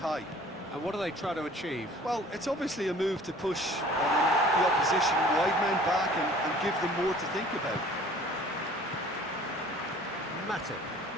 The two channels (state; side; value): normal; both; correlation 0.50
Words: And what do they try to achieve? Well, it's obviously a move to push the opposition wide men back and give them more to think about. Matip.